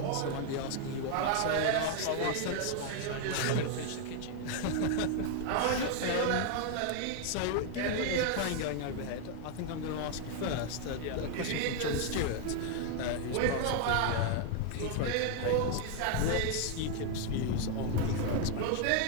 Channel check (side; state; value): both; different; correlation 0.00